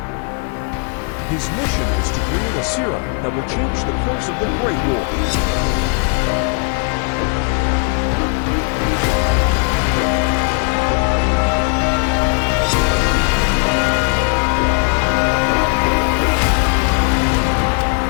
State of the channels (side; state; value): right; quieter; 38.4 dB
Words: His mission is to create a serum that will change the course of the Great War.